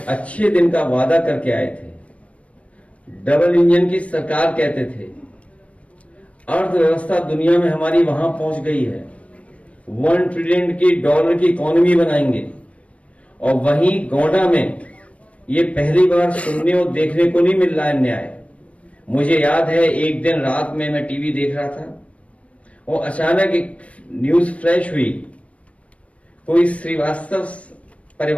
अच्छे दिन का वादा करके आए थे, डबल इंजन की सरकार कहते थे, अर्थव्यवस्था दुनिया में हमारी वहां पहुंच गई है, $1 ट्रिलियन की डॉलर की इकोनॉमी बनाएंगे। और वहीं गोंडा में ये पहली बार सुनने और देखने को नहीं मिल रहा है न्याय। मुझे याद है एक दिन रात में मैं टीवी देख रहा था और अचानक एक न्यूज फ्लैश हुई। कोई श्रीवास्तव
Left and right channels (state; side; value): late; right; 0.064 ms